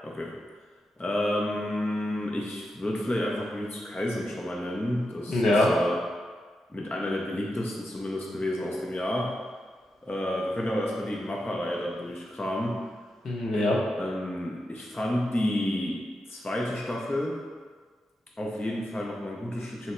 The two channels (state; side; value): normal; both; correlation 0.87